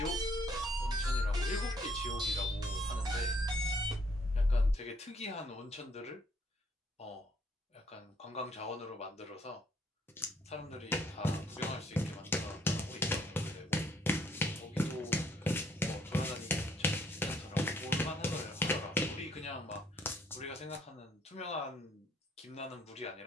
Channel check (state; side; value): normal; both; correlation 0.66